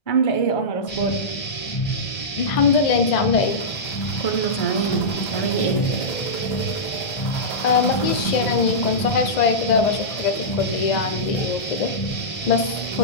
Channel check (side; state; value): right; late; 2.0 ms